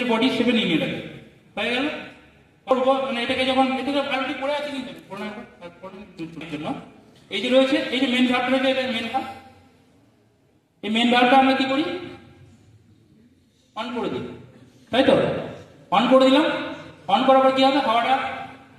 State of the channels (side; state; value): both; identical; correlation 1.00